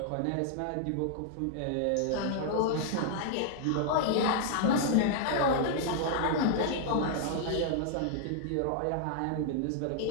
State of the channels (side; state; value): both; different; correlation -0.01